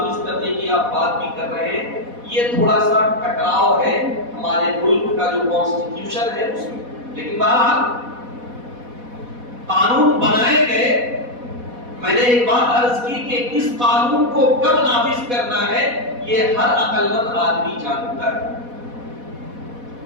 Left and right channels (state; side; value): late; left; 4.1 ms